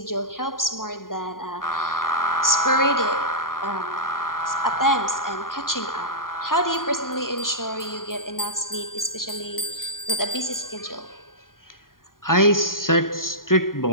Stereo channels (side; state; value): right; late; 0.91 ms